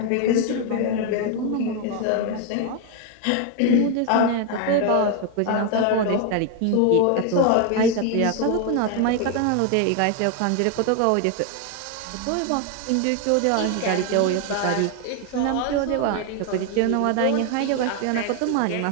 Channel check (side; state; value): both; different; correlation 0.01